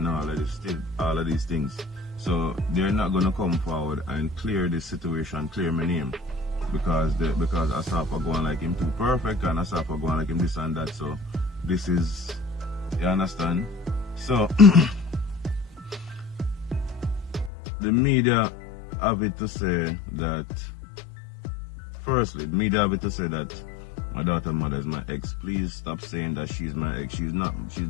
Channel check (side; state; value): right; drops out; at 17.5 s